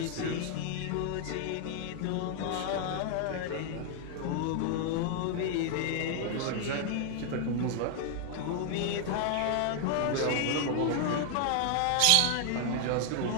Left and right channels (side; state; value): both; different; correlation 0.00